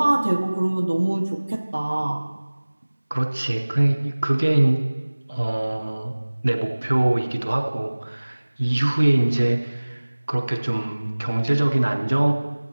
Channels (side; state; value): both; inverted; correlation -1.00